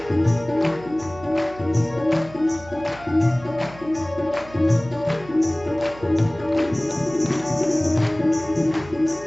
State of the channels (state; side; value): noise; right; hum, 19 dB below the sound